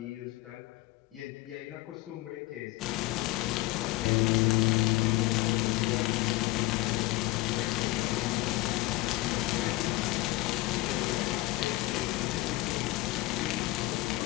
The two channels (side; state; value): right; quieter; 19.3 dB